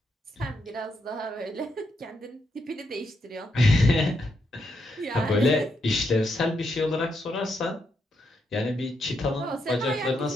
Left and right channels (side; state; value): both; normal; correlation 0.80